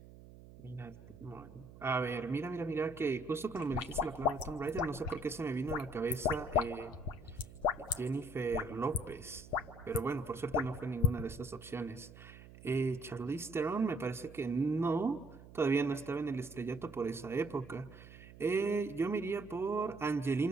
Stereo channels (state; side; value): noise; right; hum, 18 dB below the sound